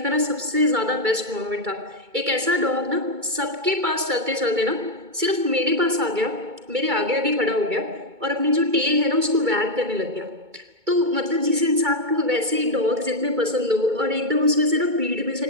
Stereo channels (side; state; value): left; late; 2.2 ms